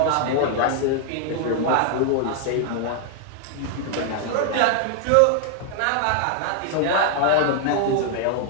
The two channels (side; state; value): both; different; correlation 0.00